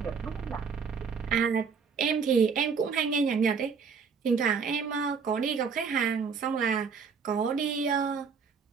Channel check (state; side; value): quieter; left; 5.8 dB